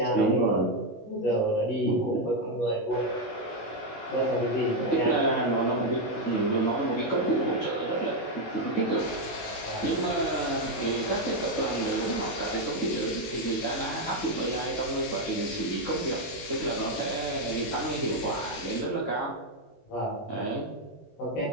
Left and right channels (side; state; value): right; late; 19 ms